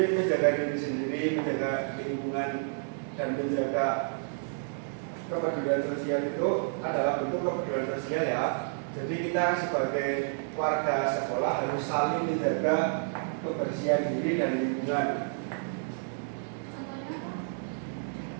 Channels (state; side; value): silent; left; digital silence